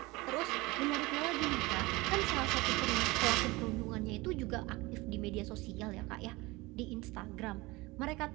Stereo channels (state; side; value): quieter; left; 22.4 dB